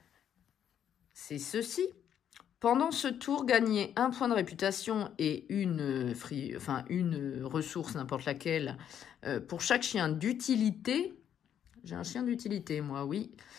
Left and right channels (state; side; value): quieter; right; 9.4 dB